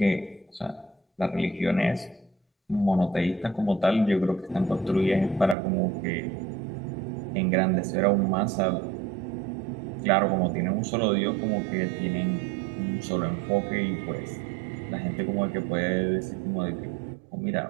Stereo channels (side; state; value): left; drops out; at 5.6 s